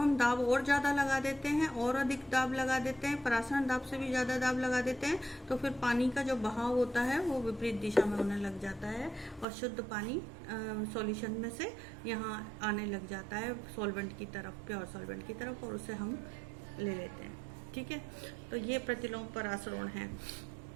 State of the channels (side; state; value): left; drops out; at 9.5 s